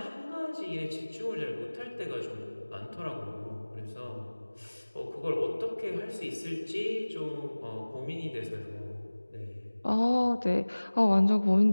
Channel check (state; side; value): inverted; both; correlation -1.00